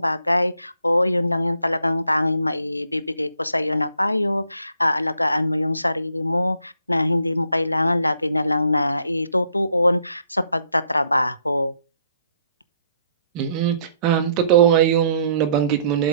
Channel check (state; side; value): inverted; both; correlation -0.67